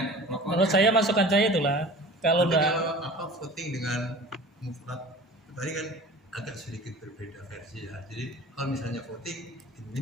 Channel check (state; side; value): normal; both; correlation 0.41